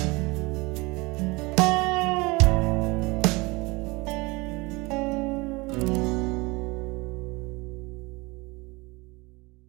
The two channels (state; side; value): quieter; left; 24.5 dB